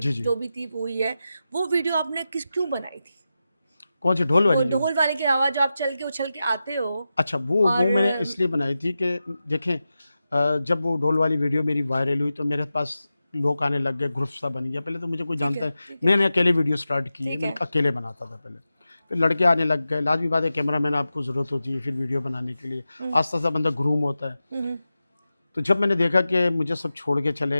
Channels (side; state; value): both; inverted; correlation -0.92